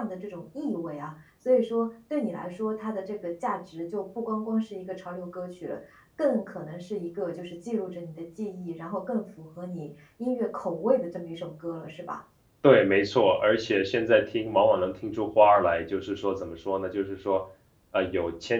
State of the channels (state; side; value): identical; both; correlation 1.00